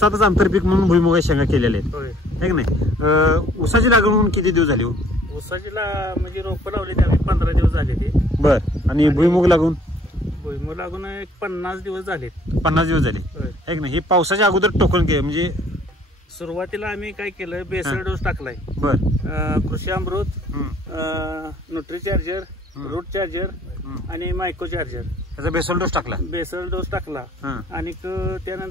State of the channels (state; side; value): normal; both; correlation 0.59